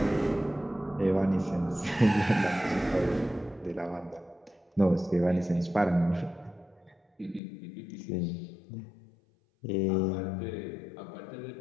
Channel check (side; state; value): right; drops out; at 7.4 s